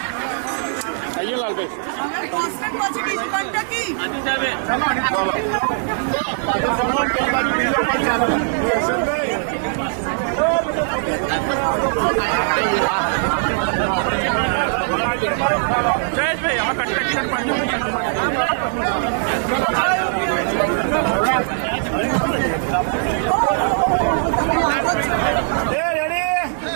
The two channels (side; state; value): left; silent; 62 dB below the other